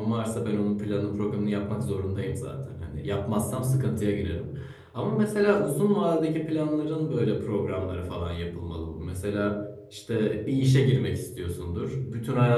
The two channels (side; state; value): both; identical; correlation 1.00